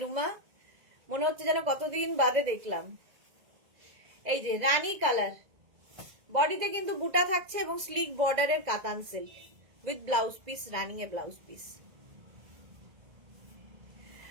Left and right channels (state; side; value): late; left; 2.0 ms